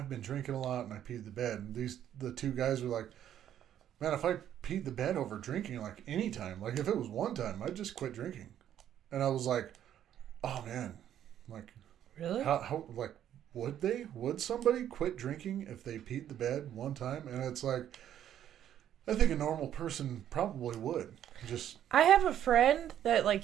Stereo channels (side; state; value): left; quieter; 10.7 dB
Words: been drinking a lot and I peed the bed. And the 2 guys were like, man, if I peed the bed over drinking like any time, like if it was one time, I'd just quit drinking. And I was like, oh man, like really? How like would somebody quit drinking if they peed the bed one time? And it's like, I think a normal person probably would. I have a friend that like